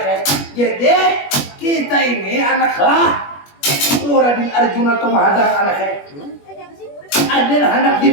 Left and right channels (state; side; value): late; right; 21 ms